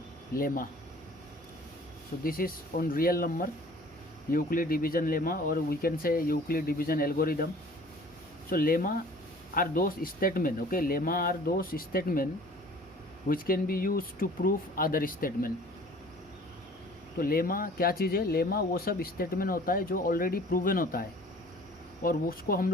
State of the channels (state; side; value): normal; both; correlation 0.49